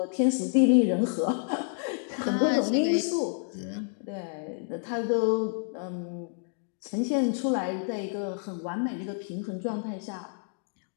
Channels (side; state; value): right; silent; 59 dB below the other